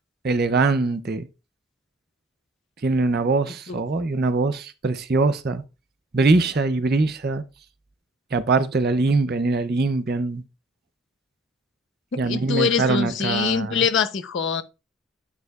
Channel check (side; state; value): both; normal; correlation 0.51